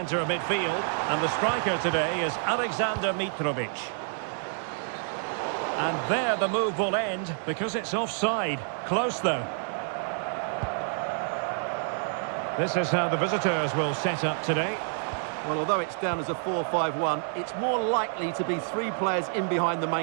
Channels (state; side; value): silent; left; 59 dB below the other